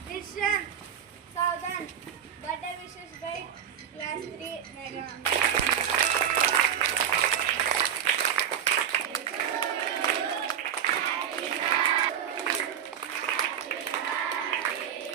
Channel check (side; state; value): left; quieter; 9.0 dB